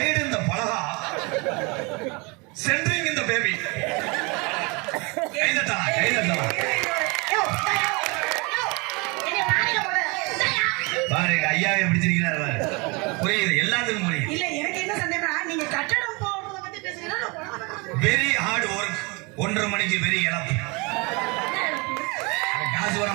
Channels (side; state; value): left; quieter; 28.6 dB